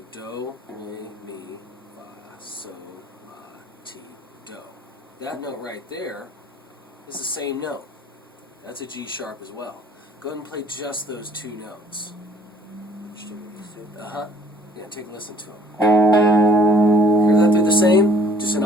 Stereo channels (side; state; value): both; normal; correlation 0.57